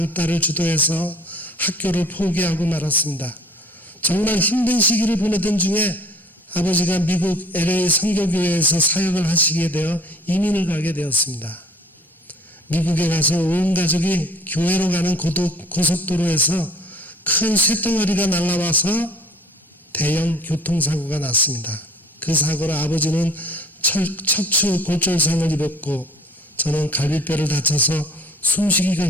주도해서 학교를 포기하고 말았습니다. 정말 힘든 시기를 보내던 중에 아버지가 미국 LA 선교교회에서 사역을 하시게 되어 이민을 가게 되었습니다. 미국에 가서 온 가족이 교회로 가는 고속도로에서 큰 쇳덩어리가 날아와서 대형 교통사고가 났습니다. 그 사고로 아버지는 척추 골절상을 입었고 저는 갈비뼈를 다쳐서 숨쉬기가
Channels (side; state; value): both; normal; correlation 0.50